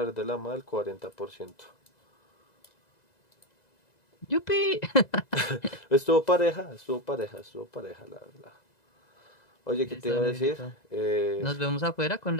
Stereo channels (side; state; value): right; late; 2.0 ms